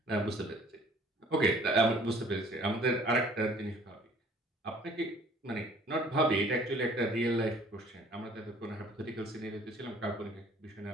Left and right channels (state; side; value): normal; both; correlation 0.55